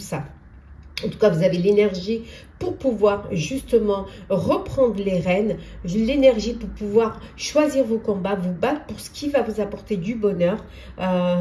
En tout cas, vous avez l'énergie pour pouvoir justement reprendre les rênes, l'énergie pour pouvoir choisir vos combats, vous battre pour ce qui va vous apporter du bonheur.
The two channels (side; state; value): both; identical; correlation 1.00